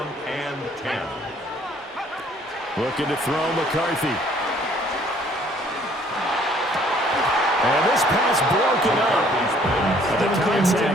and 10. Looking to throw McCarthy. And this pass broken up. The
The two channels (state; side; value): normal; both; correlation 0.60